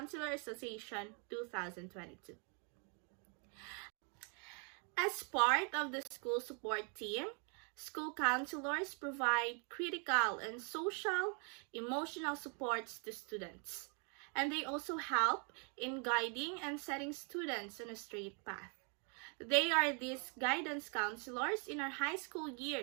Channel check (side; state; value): left; quieter; 38.5 dB